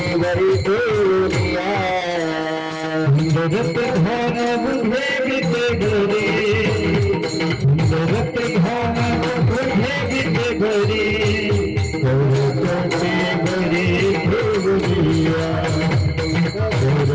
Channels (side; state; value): both; identical; correlation 1.00